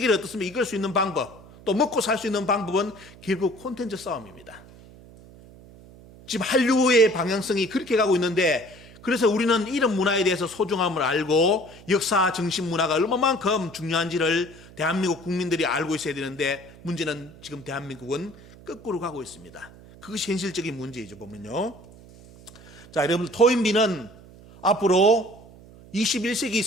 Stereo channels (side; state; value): right; noise; hum, 21 dB below the sound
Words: 어떻습니까? 이끌 수 있는 방법, 또 먹고 살 수 있는 방법은 결국 콘텐츠 싸움입니다. 지금 한류의 방향성이 그렇게 가고 있는데 그래서 우리는 이런 문화에 대해서 소중함을 알고 역사 정신 문화가 얼마만큼 중요한지를 대한민국 국민들이 알고 있어야 되는데 문제는 지금 대한민국은 거꾸로 가고 있습니다. 그것이 현실적인 문제이죠, 보면요. 자, 여러분, 토인비는 앞으로 21세기